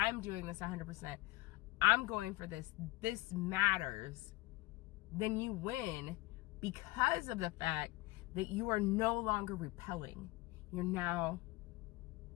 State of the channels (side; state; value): right; quieter; 20.5 dB